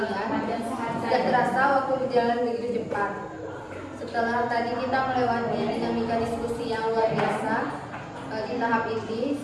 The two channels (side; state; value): both; identical; correlation 1.00